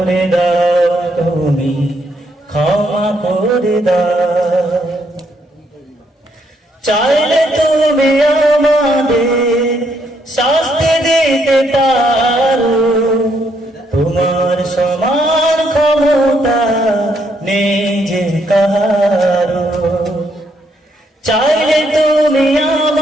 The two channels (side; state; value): both; normal; correlation 0.73